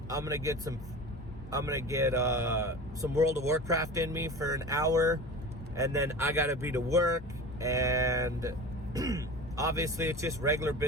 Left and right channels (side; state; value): both; normal; correlation 0.33